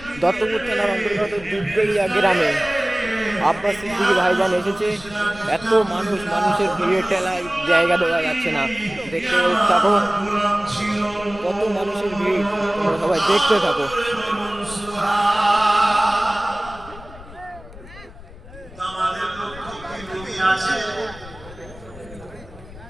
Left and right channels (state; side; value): noise; left; rumble, 18 dB below the sound